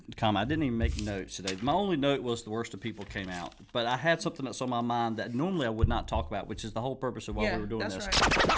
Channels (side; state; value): both; identical; correlation 1.00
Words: comment. I didn't even make notes today. My only note was the worst of people came out. But I had something that's on my mind that normally I would not talk about, which is the whole purpose of why we were doing this. Right.